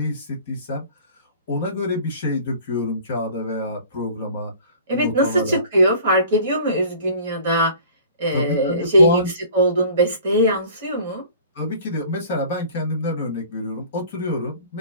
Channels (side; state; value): both; inverted; correlation -0.48